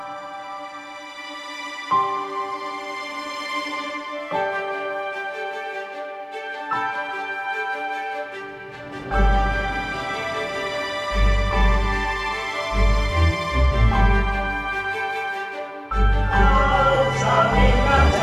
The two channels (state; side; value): identical; both; correlation 1.00